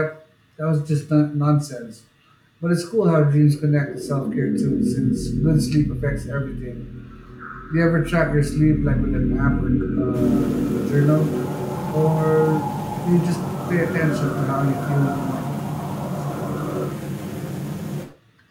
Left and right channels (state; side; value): identical; both; correlation 1.00